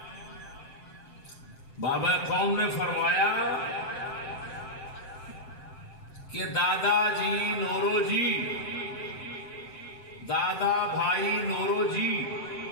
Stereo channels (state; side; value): late; right; 7.6 ms